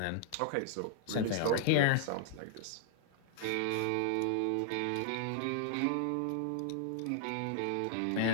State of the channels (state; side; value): different; both; correlation -0.01